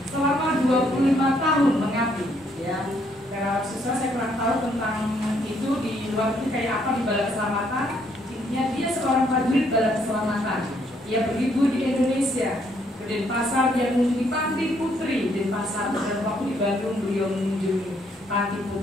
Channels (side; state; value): both; normal; correlation 0.70